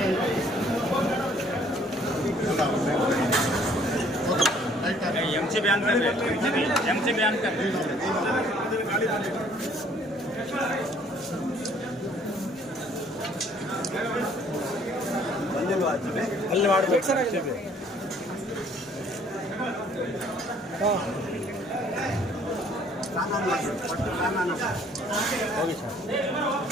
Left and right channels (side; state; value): both; normal; correlation 0.59